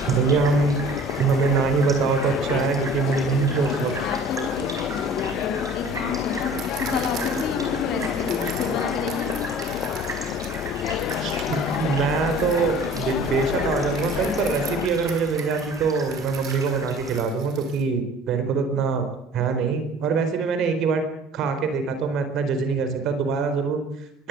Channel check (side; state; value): both; normal; correlation 0.47